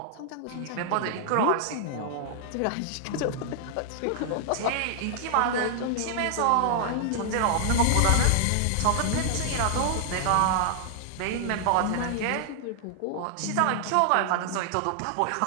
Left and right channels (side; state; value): both; different; correlation 0.00